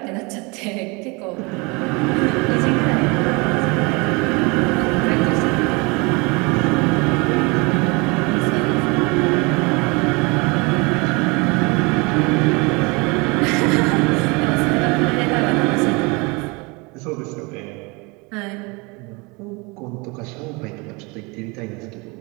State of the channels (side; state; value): left; quieter; 27.6 dB